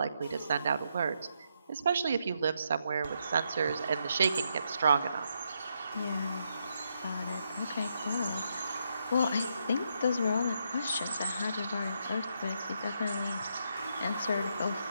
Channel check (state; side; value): inverted; both; correlation -0.79